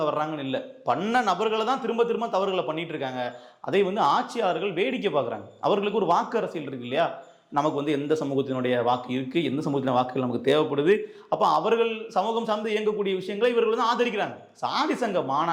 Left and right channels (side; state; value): both; identical; correlation 1.00